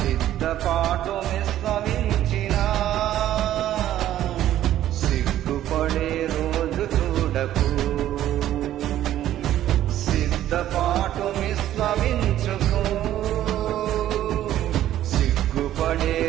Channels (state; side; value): quieter; left; 12.6 dB